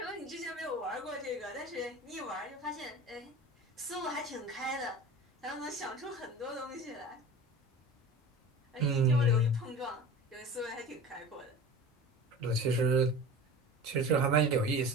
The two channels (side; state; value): both; normal; correlation 0.35